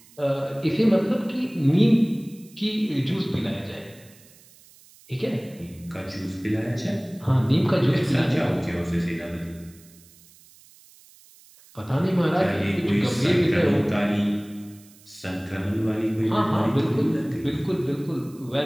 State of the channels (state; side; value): noise; right; hiss, 26 dB below the sound